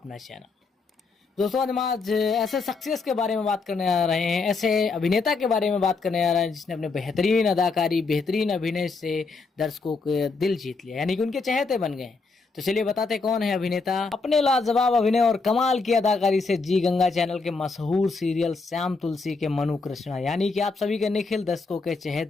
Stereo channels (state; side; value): quieter; right; 4.1 dB